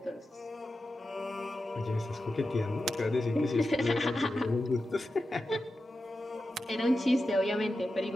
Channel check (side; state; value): both; normal; correlation 0.91